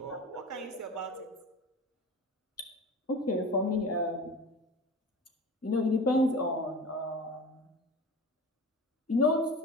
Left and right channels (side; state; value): both; normal; correlation 0.35